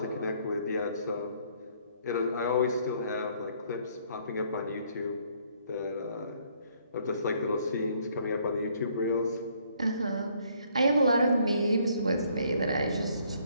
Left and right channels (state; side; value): inverted; both; correlation -0.65